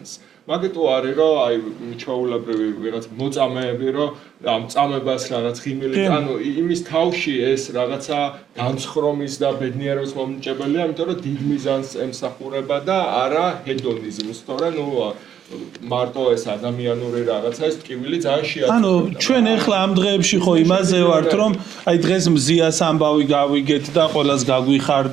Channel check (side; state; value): left; quieter; 9.2 dB